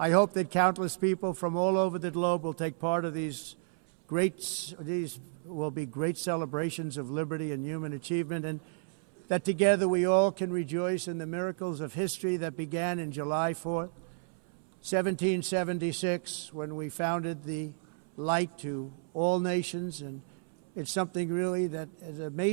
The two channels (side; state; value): left; silent; 57 dB below the other